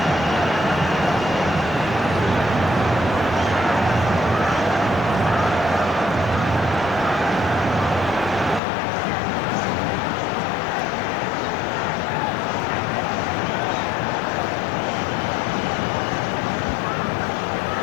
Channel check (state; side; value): drops out; right; at 8.6 s